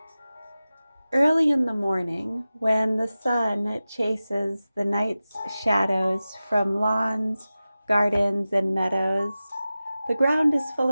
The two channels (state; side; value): inverted; both; correlation -0.95